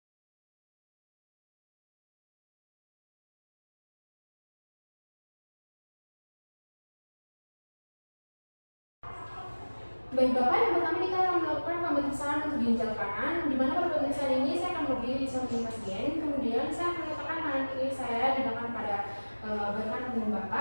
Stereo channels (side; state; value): both; inverted; correlation -1.00